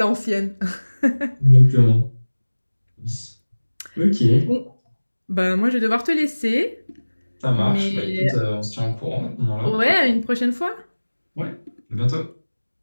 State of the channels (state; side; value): inverted; both; correlation -1.00